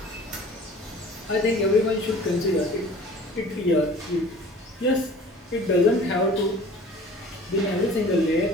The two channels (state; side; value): normal; both; correlation 0.46